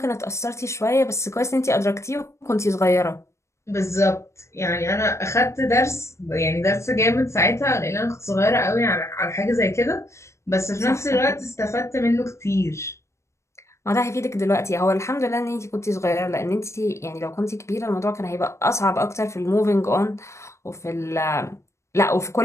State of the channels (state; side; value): late; right; 0.14 ms